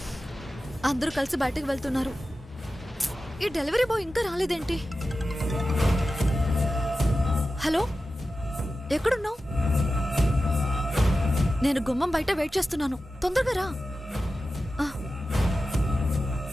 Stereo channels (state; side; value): normal; both; correlation 0.93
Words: అందరూ కలిసి బయటకు వెళ్తున్నారు. ఈ డెలివరీ బాయ్ ఇంకా రాలేదేంటి? హలో, ఎక్కడున్నావు? నేను గుమ్మం బయట వెయిట్ చేస్తున్నాను, తొందరగా రా.